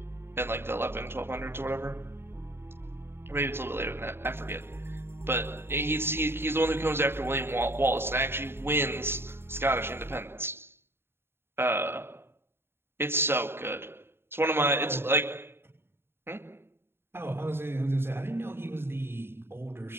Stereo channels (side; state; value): left; late; 0.11 ms